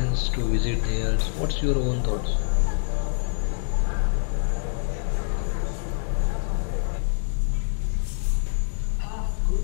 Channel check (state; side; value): silent; right; 61 dB below the other